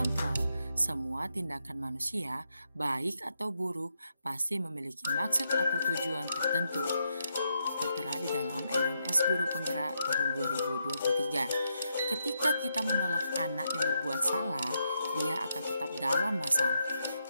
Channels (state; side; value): inverted; both; correlation -0.81